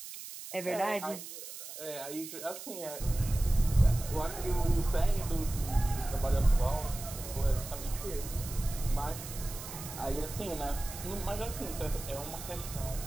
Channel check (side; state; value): right; noise; hiss, 11 dB below the sound